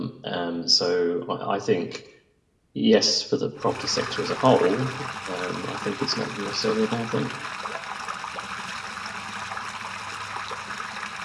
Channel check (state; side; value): identical; both; correlation 1.00